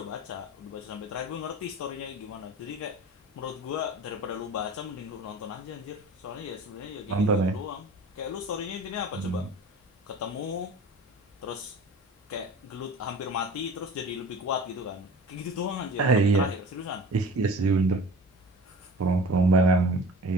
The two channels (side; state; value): both; normal; correlation 0.40